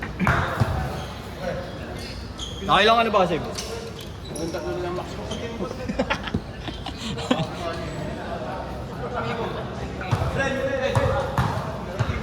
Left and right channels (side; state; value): both; identical; correlation 1.00